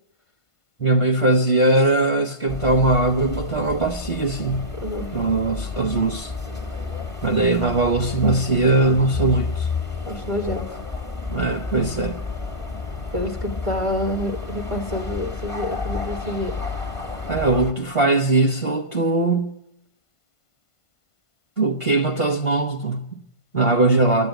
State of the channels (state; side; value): late; right; 1.5 ms